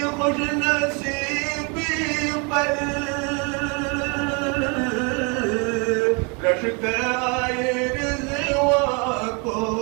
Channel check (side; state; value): left; quieter; 32.2 dB